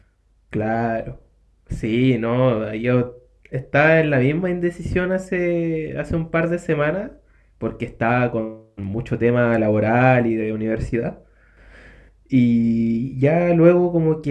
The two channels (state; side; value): identical; both; correlation 1.00